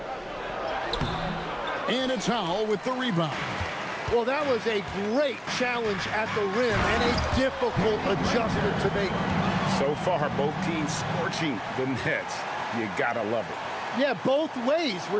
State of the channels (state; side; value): identical; both; correlation 1.00